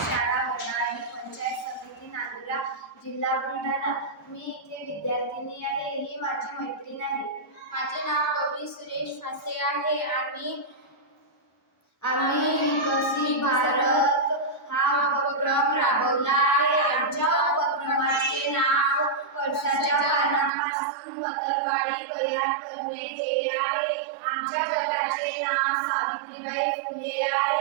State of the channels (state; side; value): drops out; left; at 20.5 s